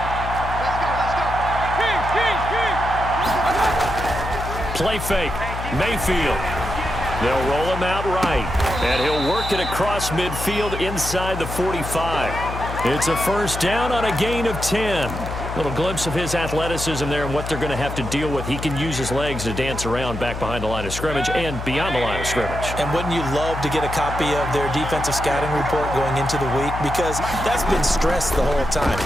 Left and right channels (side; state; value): left; noise; hum, 7 dB below the sound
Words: Play fake. Mayfield. They'll roll him out right. And he'll work it across midfield inside the 45. It's a first down on a gain of 10. Little glimpse of his athleticism there and what they're going to have to deal with. He can use his legs to dance around back behind the line of scrimmage and beyond the line of scrimmage. And wouldn't you love to get a copy of their defensive scouting report going into the week? Because that's been stressed the whole time.